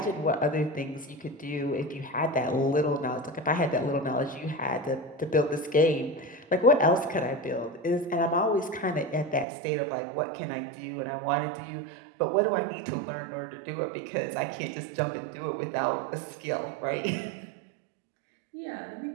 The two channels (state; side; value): drops out; left; at 9.5 s